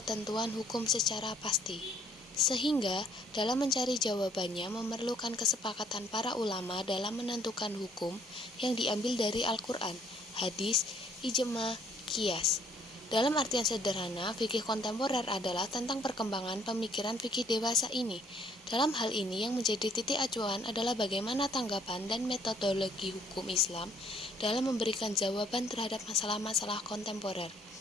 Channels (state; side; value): normal; both; correlation 0.63